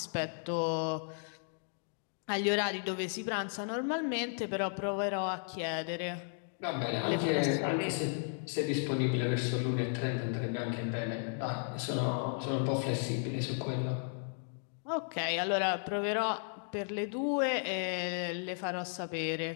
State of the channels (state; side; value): silent; right; 55 dB below the other